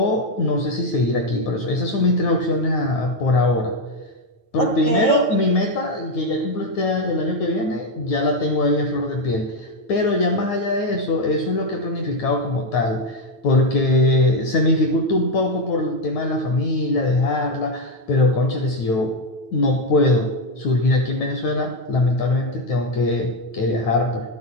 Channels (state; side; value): late; right; 9.1 ms